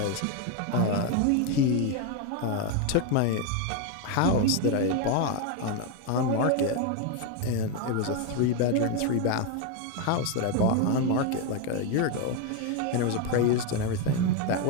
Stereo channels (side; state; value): both; different; correlation 0.02